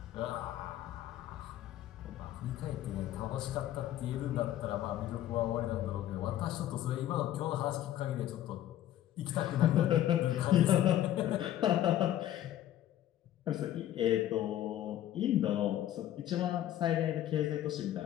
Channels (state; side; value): quieter; right; 12.5 dB